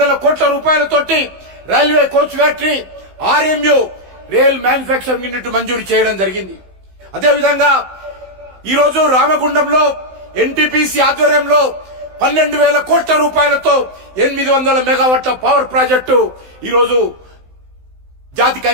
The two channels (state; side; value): late; left; 16 ms